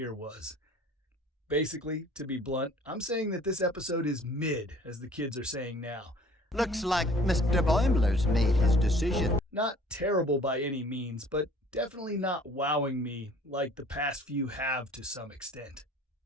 was. Basically, to be blunt, I'm saying that this episode is mid, as the kids are saying now. Looks like Mr. Boimler's made his decision. Not terrible by any means, but definitely not wowing me like the past few have to some extent.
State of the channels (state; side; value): normal; both; correlation 0.51